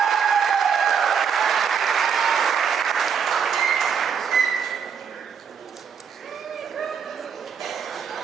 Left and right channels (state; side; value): quieter; left; 6.9 dB